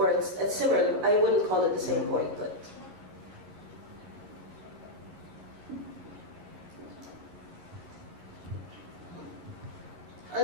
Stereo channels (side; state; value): left; late; 11 ms